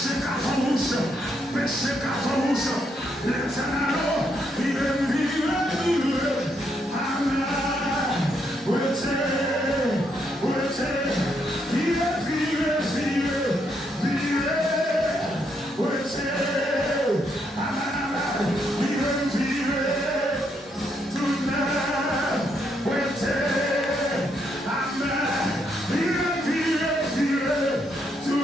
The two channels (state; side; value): normal; both; correlation 0.76